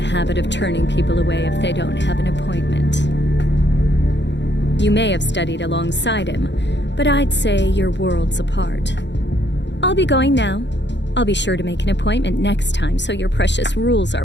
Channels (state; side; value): late; right; 0.52 ms